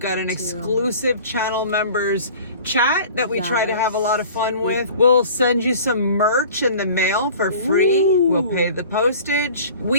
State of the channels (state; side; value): inverted; both; correlation -0.44